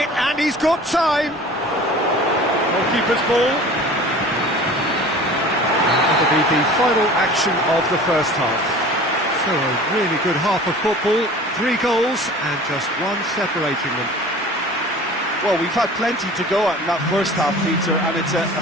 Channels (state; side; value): normal; both; correlation 0.42